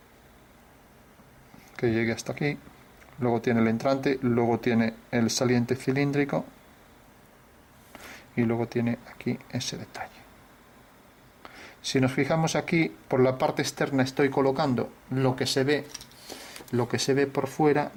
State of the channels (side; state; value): both; identical; correlation 1.00